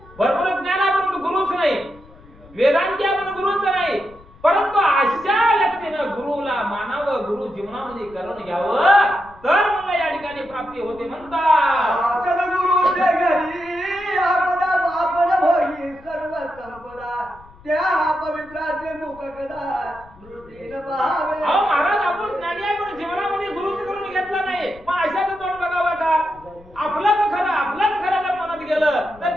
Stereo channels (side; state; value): left; noise; rumble, 24 dB below the sound